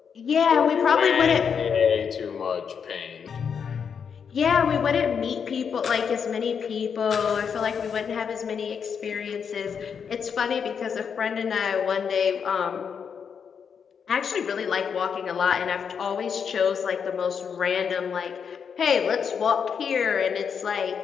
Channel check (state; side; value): quieter; right; 6.8 dB